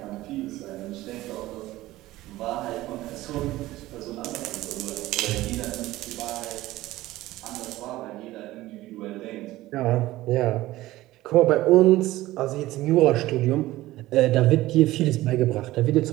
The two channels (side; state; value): left; quieter; 16.9 dB